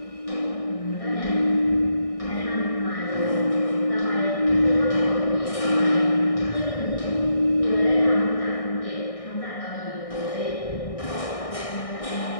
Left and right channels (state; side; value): late; right; 1.6 ms